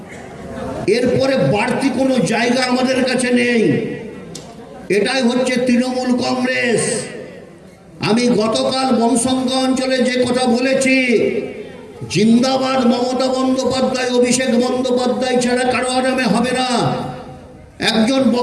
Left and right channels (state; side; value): identical; both; correlation 1.00